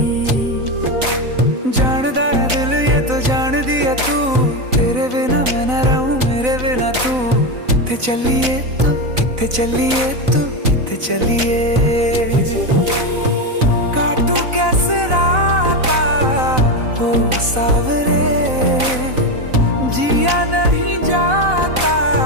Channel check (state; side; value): late; left; 4.0 ms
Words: जानदा है दिल ये तो जान दिया तू, तेरे बिना मैं ना रहूं मेरे बिना तू। किथे चलिए तू, किथे चलिए तू, किथे चलिए। काटू कैसे राता हो सावरे, जिया नहीं जाता